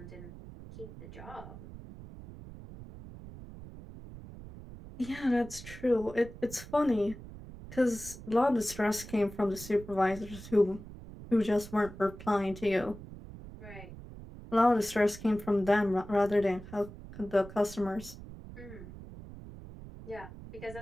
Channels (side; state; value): right; noise; rumble, 14 dB below the sound